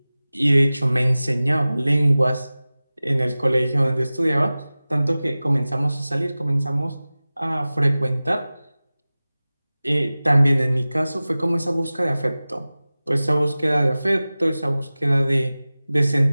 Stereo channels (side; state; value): both; inverted; correlation -0.97